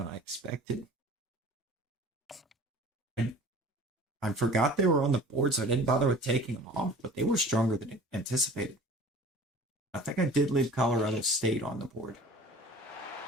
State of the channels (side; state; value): both; normal; correlation 0.44